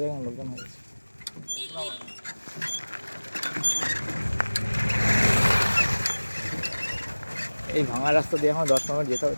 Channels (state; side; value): inverted; both; correlation -1.00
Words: যায়, লোকজন হয়ে গেছে। এই ভাঙা রাস্তা দিয়ে এখন 10 মিনিট যেতে হবে,